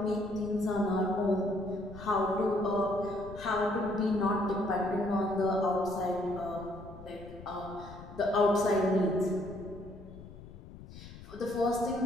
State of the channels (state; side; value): noise; left; rumble, 16 dB below the sound